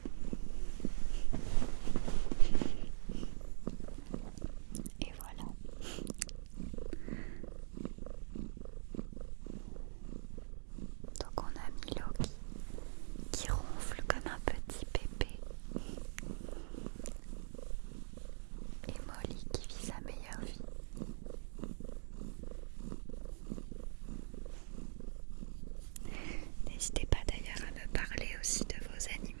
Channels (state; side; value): silent; left; digital silence